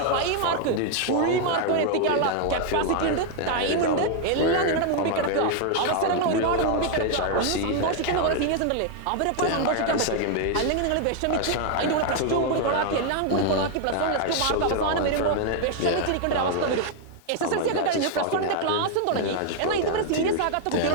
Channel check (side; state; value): both; different; correlation 0.00